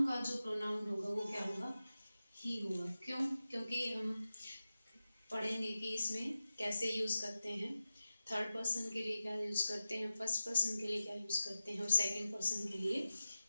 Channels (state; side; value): inverted; both; correlation -0.94